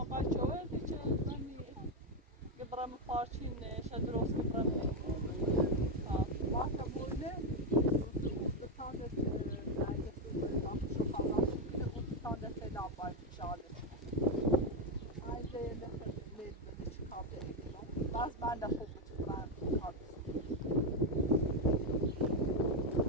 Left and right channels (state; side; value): normal; both; correlation 0.06